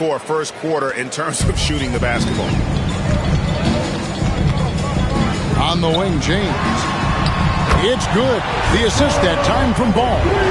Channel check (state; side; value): identical; both; correlation 1.00